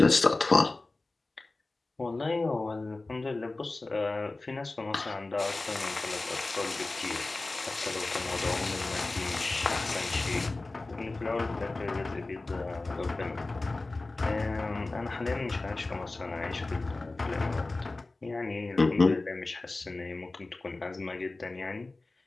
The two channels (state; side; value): quieter; right; 3.2 dB